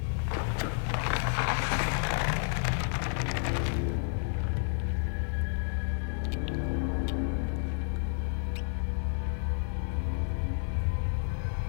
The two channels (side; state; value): right; silent; digital silence